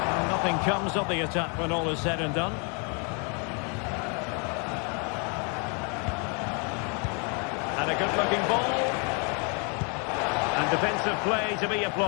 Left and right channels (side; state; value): right; quieter; 36.1 dB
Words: Nothing comes of the attack when all is said and done. And a good-looking ball. And defensive play to be